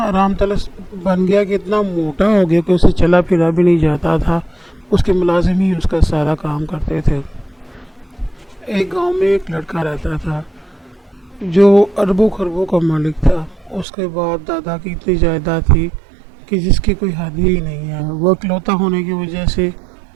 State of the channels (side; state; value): left; drops out; at 13.9 s